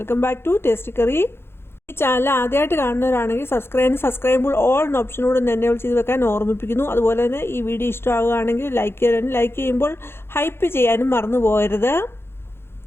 back to tasty curry. ഈ ചാനൽ ആദ്യമായിട്ട് കാണുന്നവരാണെങ്കിൽ സബ്സ്ക്രൈബിൾ ഓൾ എന്ന ഓപ്ഷനോട് എനേബിൾ ചെയ്ത് വെക്കാൻ ഓർമ്മിപ്പിക്കുന്നു. അതുപോലെ തന്നെ ഈ വീഡിയോ ഇഷ്ടമാകുകയാണെങ്കിൽ ലൈക്ക് ചെയ്യുമ്പോൾ ഹൈപ്പ് ചെയ്യാനും മറന്നു പോകരുത്.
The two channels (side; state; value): right; late; 0.11 ms